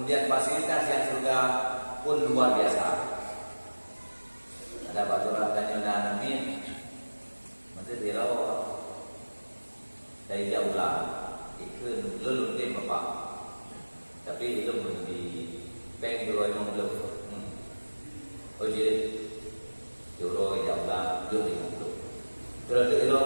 fasilitas yang surga pun luar biasa. Ada baturan tanya amin, mesti dirawat dari jauh lah, ikut lulun deh bapak. Tapi itu belum di bank dulu emang belum. Oh jadi euro jauh lah, belum belum. Terus euro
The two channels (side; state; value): both; inverted; correlation -1.00